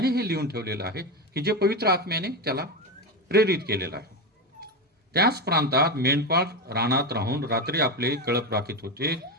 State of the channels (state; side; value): normal; both; correlation 0.15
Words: हे लिहून ठेवलेलं आहे की जे पवित्र आत्म्याने त्याला प्रेरित केलेलं आहे. त्याच प्रांतात मेंढपाळ रानात राहून रात्री आपले कळप राखीत होते.